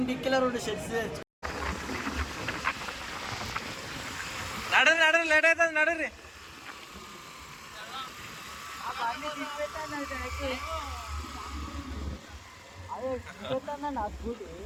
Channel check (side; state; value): both; identical; correlation 1.00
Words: డిక్కీలో 2 షర్ట్స్ తెచ్చు. నడరు లేట్ అవుతుంది నడరు. నా స్కూటీ